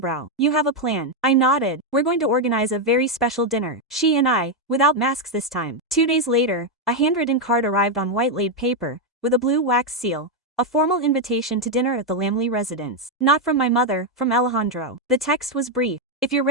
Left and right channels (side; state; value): both; normal; correlation 0.03